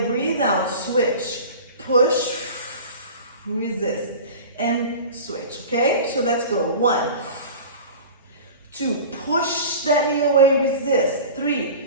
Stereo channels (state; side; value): inverted; both; correlation -0.35